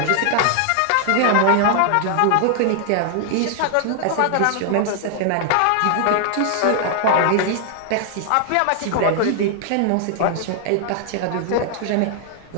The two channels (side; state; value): both; different; correlation 0.00